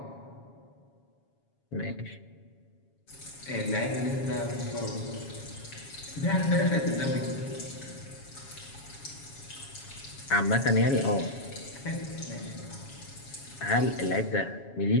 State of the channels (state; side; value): late; right; 7.2 ms